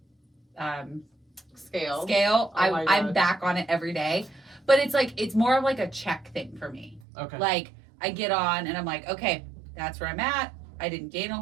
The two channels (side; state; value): left; drops out; at 7.0 s